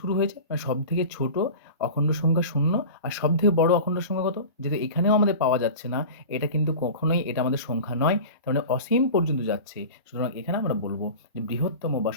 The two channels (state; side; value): inverted; both; correlation -0.34